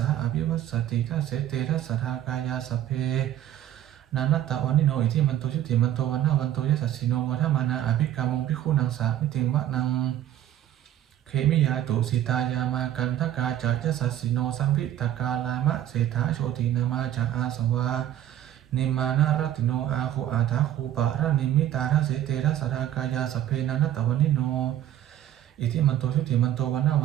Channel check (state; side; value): quieter; left; 11.7 dB